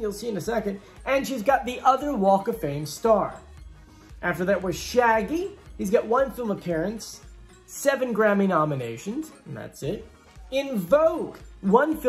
see in a second. And she's got the other Walk of Fame star. After that was Shaggy. He's got 1 film appearance, 7 Grammy nominations, and that's it. In Vogue, 1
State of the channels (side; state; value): both; identical; correlation 1.00